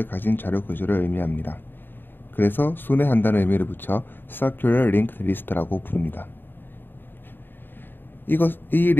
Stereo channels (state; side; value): late; right; 0.095 ms